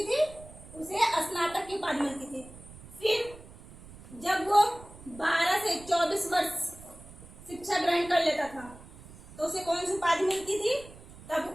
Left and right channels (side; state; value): right; noise; rumble, 19 dB below the sound